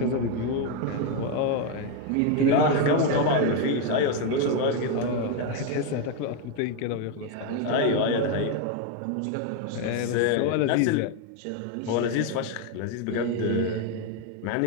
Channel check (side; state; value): both; different; correlation 0.02